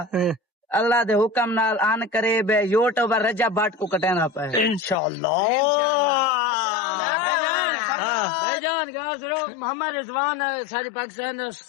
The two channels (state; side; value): drops out; right; at 5.0 s